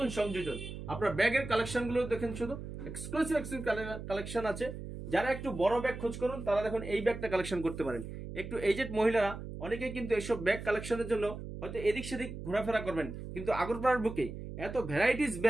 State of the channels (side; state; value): right; noise; hum, 9 dB below the sound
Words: সংযোজন। আপনার ব্যাগের কালেকশনগুলো দেখেন, শুধু এক্সক্লুসিভ কালেকশন আছে। যারা একটু বড় ব্যাগ খোঁজ করুন তারা দেখুন এই ব্যাগটা কালেকশন করতে পারেন। একটু এজেড মহিলারা অনেকেই কিন্তু এইসব ব্যাগ কালেকশনের জন্য হয়তো এদিক সেদিক ঘোরাফেরা করবেন, কিন্তু আগরপাড়ার বুকে এত ভ্যারাইটিস